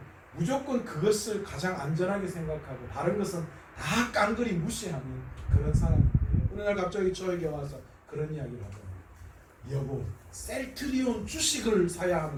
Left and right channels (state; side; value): identical; both; correlation 1.00